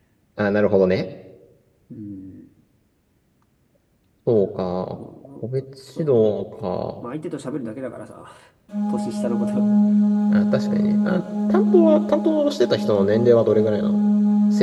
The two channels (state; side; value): identical; both; correlation 1.00